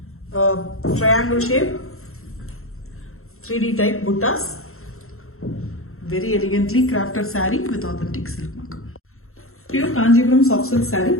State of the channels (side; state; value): right; late; 0.62 ms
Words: Triangle shape, 3D type buttas. Very elegantly crafted saree with authentic silk mark. Pure Kanjipuram soft silk saree.